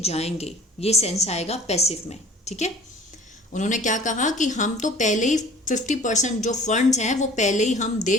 जाएंगे, ये सेंस आएगा पैसिव में। ठीक है, उन्होंने क्या कहा कि हम तो पहले ही 50% जो फंड्स हैं वो पहले ही हम दे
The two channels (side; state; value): both; normal; correlation 0.48